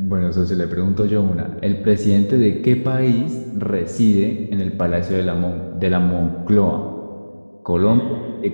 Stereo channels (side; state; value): both; inverted; correlation -1.00